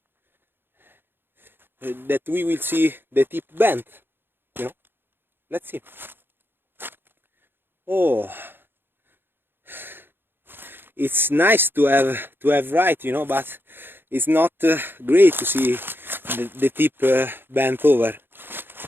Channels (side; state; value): left; late; 0.10 ms